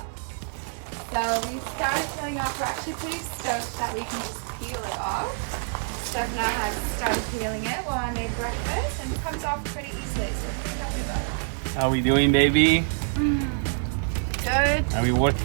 So we started peeling off. We're actually pretty stoked that we can just peel it off. Stefano has started peeling it while I made breakfast, and it comes off pretty easily, so we're pretty happy about that. How are we doing, baby? Good. Are we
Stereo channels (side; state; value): left; silent; 61 dB below the other